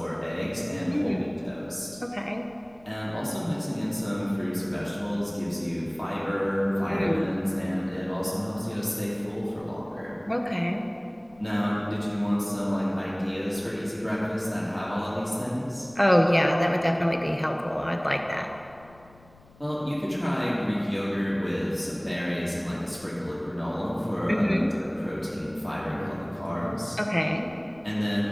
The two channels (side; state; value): left; noise; rumble, 26 dB below the sound